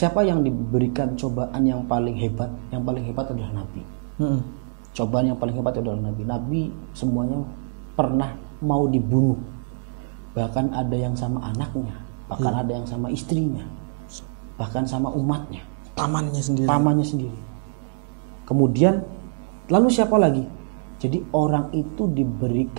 yang diberikan cobaan yang paling hebat adalah Nabi. Cobaan yang paling hebat adalah Nabi. Nabi semuanya pernah mau dibunuh. Bahkan ada yang sama anaknya, bahkan ada yang sama istrinya, bahkan sama umatnya. pamannya sendiri. Kemudian lalu siapa lagi? Jadi orang itu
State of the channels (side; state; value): left; silent; digital silence